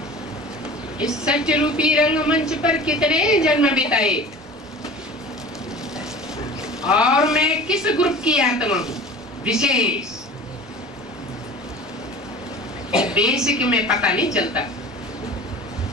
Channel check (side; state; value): both; normal; correlation 0.40